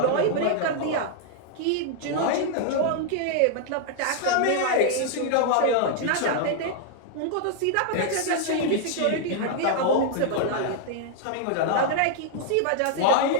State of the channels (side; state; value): both; different; correlation 0.00